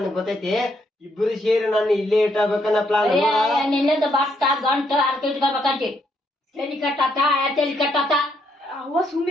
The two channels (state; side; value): normal; both; correlation 0.74